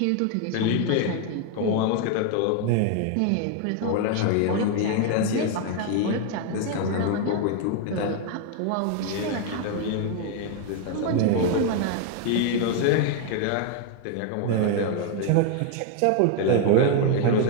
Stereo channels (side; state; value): both; different; correlation 0.00